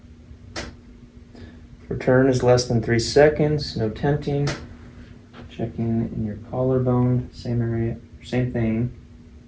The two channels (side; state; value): both; identical; correlation 1.00